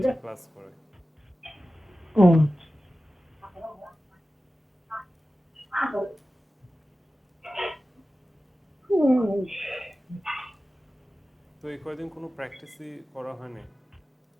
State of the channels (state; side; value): normal; both; correlation 0.95